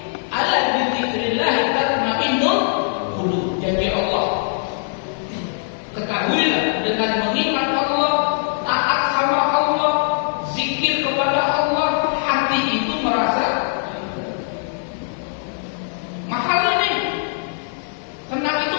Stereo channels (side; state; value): right; silent; digital silence